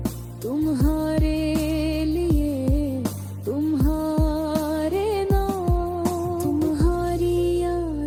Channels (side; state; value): both; identical; correlation 1.00